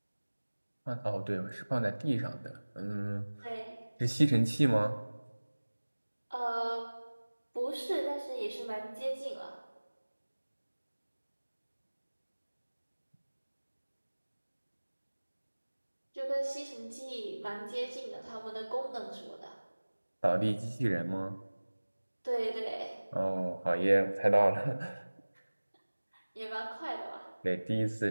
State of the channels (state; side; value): inverted; both; correlation -1.00